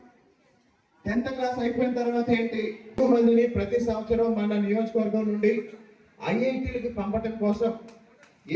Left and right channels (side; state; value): both; identical; correlation 1.00